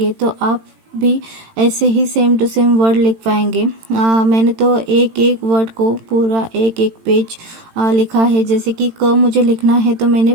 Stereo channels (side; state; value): left; late; 18 ms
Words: तो आप भी ऐसे ही सेम टू सेम वर्ड लिख पाएंगे। मैंने तो एक एक वर्ड को पूरा एक एक पेज लिखा है। जैसे कि क मुझे लिखना है तो मैंने